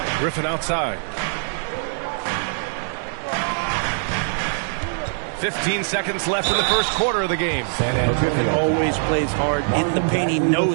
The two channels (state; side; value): silent; left; digital silence